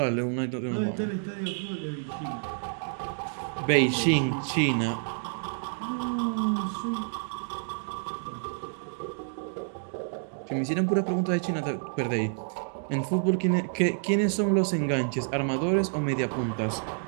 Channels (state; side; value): silent; left; digital silence